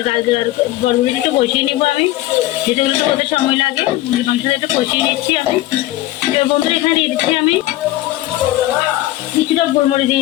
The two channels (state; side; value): quieter; right; 16.2 dB